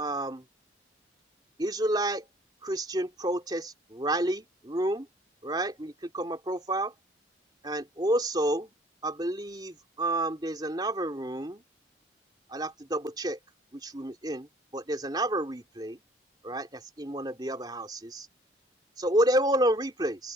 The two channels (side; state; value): both; normal; correlation 0.55